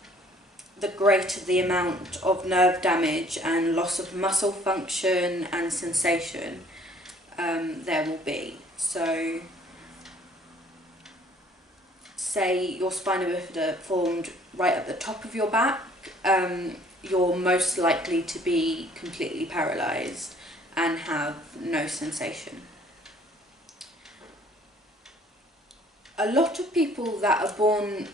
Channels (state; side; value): normal; both; correlation 0.57